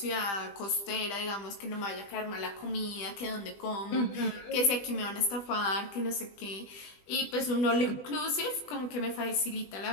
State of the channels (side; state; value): right; late; 20 ms